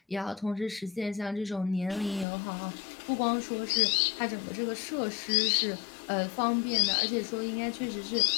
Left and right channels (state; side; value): drops out; right; at 2.2 s